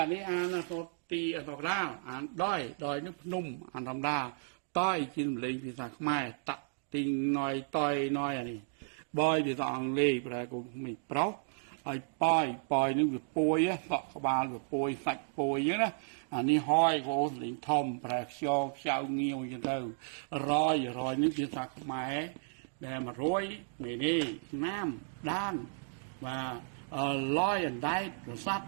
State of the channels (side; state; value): left; silent; digital silence